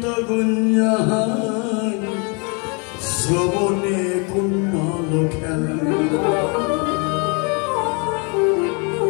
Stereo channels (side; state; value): right; quieter; 34.0 dB